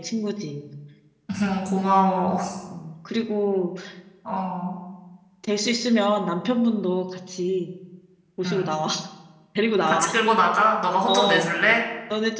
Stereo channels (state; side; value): identical; both; correlation 1.00